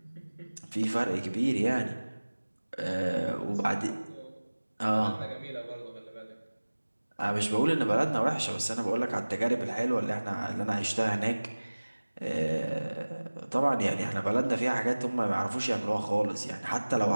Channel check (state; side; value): inverted; both; correlation -1.00